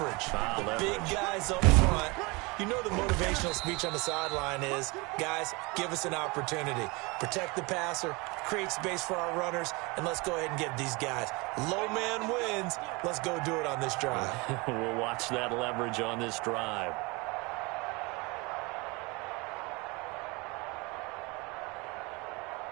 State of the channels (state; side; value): quieter; left; 26.2 dB